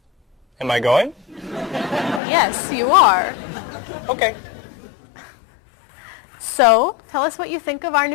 Am I going? Yes, you are. Okay. So, tell us what you think of our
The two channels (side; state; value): right; drops out; at 2.2 s